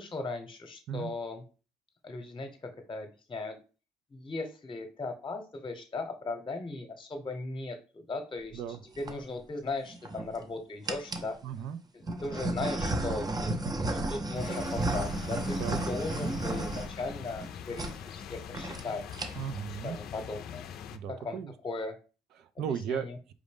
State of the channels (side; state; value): both; normal; correlation 0.66